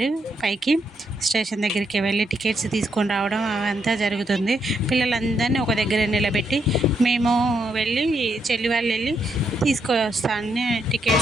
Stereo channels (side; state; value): both; normal; correlation 0.78